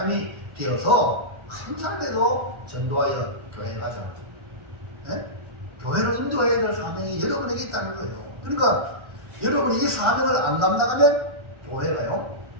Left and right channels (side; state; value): left; late; 1.4 ms